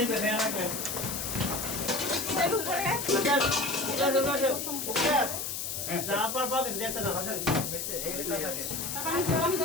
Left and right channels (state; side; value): noise; left; hiss, 4 dB below the sound